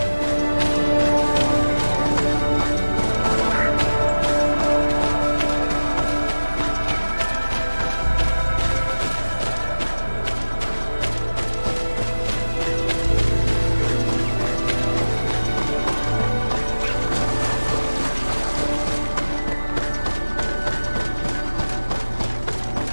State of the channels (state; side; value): inverted; both; correlation -1.00